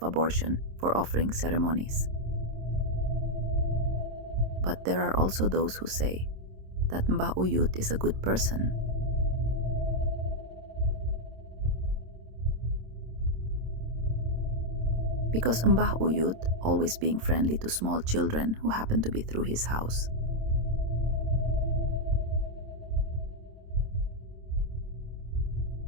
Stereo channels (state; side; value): late; left; 26 ms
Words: abortion, for offering ceremonies. But there are also those who say that Mbah Uyut is a good person. Because Mbah Uyut, always being friendly to small children who happen to be through his house.